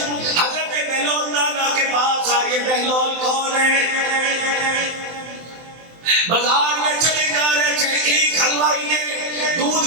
حضرت بہلول دانا کے پاس آئے. بہلول کون ہے؟ بازار میں چلے جا رہے تھے، ایک حلوائی نے،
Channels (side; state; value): left; late; 23 ms